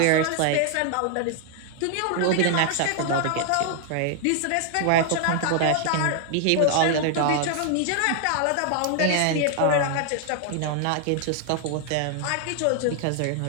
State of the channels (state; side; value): different; both; correlation 0.00